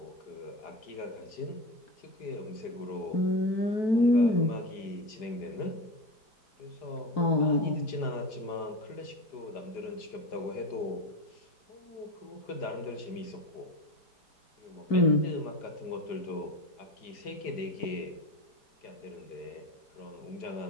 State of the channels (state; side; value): late; right; 4.9 ms